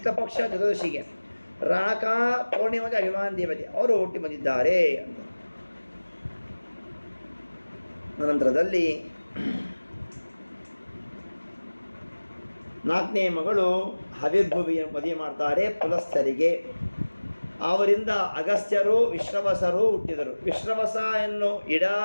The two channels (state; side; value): inverted; both; correlation -1.00